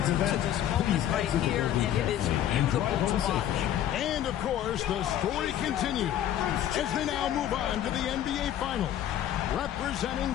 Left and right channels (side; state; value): right; quieter; 11.3 dB